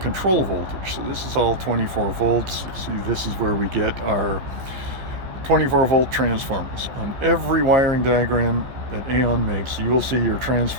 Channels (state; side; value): late; left; 15 ms